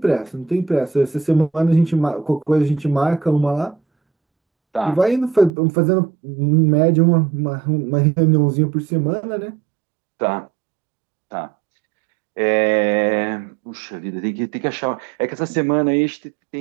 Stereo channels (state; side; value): drops out; left; at 5.5 s